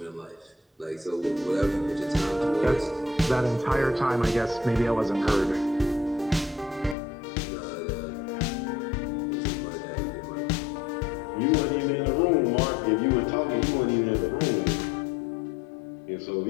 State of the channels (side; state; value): right; drops out; at 7.0 s